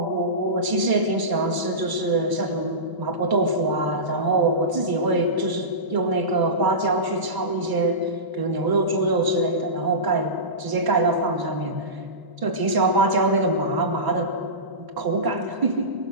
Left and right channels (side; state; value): left; late; 1.0 ms